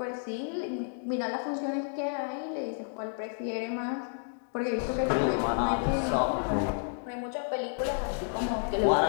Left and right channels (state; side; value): silent; right; digital silence